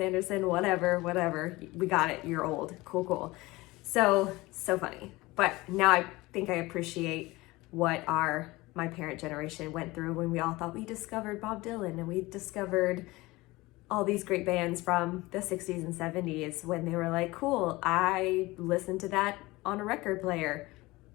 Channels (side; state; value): right; quieter; 20.8 dB